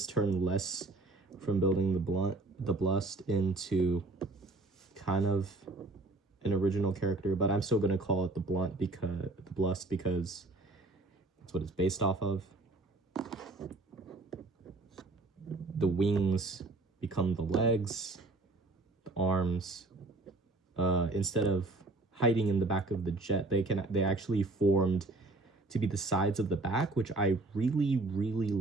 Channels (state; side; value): quieter; left; 3.0 dB